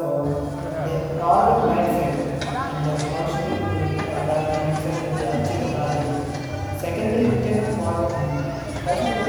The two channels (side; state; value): both; identical; correlation 1.00